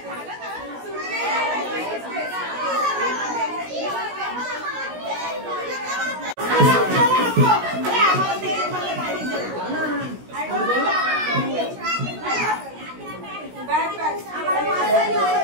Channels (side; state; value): left; late; 16 ms